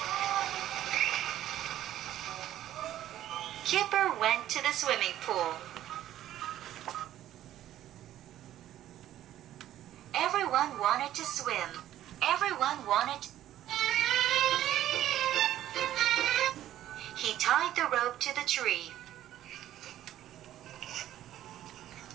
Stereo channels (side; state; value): left; quieter; 12.7 dB